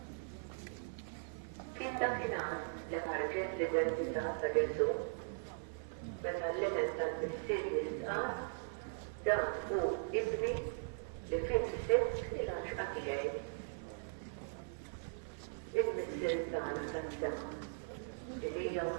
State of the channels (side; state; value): left; silent; 51 dB below the other